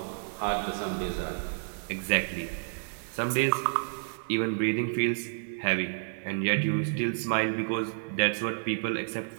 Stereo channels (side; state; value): left; silent; digital silence